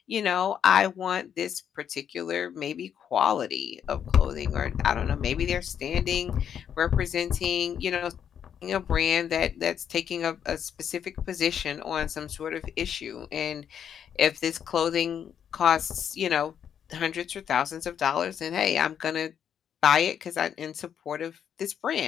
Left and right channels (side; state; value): right; quieter; 8.6 dB